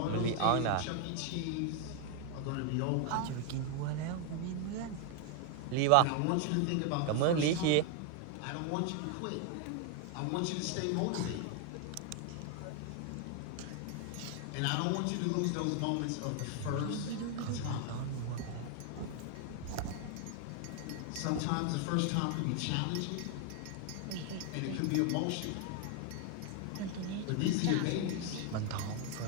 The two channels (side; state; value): both; different; correlation 0.01